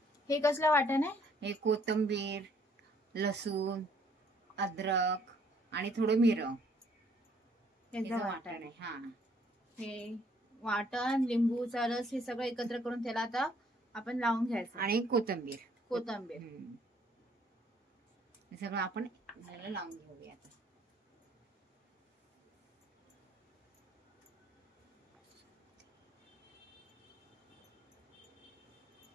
हे कसलं वाटण आहे? हे कोथिंबीर, लसूण, अद्रक आणि थोडं मिरं त्याचं वाटण आहे. हा, हे वाटण, लिंबूचा रस हे सगळं एकत्र करून त्याला आता आपण लावून घ्यायचं. आणि कोथिंबीर हे सगळं आपण लावून घेऊया.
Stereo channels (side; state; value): both; normal; correlation 0.63